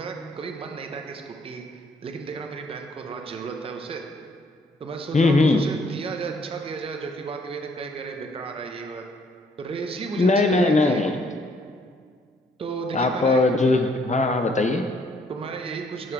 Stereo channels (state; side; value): normal; both; correlation 0.65